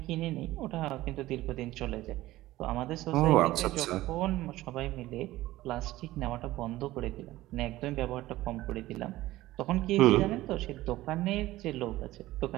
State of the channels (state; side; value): quieter; left; 16.8 dB